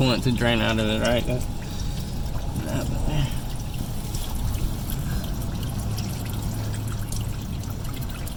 to drain out of it, right?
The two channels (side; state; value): both; identical; correlation 1.00